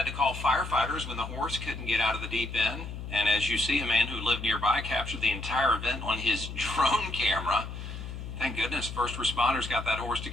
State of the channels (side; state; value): left; noise; hum, 8 dB below the sound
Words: to call firefighters when the horse couldn't get out of the deep end. And as you see, a man who lived nearby captured the entire event on his drone camera. Thank goodness first responders got that horse